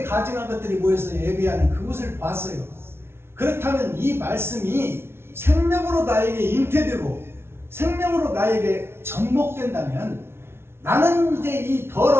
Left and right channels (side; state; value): left; late; 0.12 ms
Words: 가증한 것들이 모여서 예배하는 그곳을 봤어요. 그렇다면 이 말씀이 생명으로 나에게 잉태되고 생명으로 나에게 접목된다면 나는 이제 이